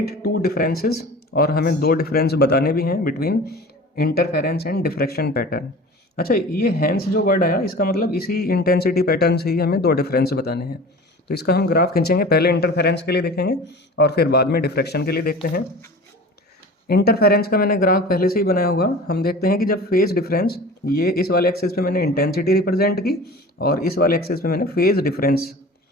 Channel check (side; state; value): both; normal; correlation 0.39